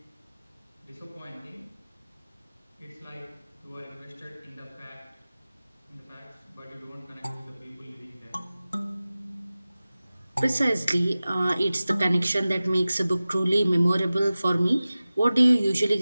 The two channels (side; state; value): both; inverted; correlation -0.97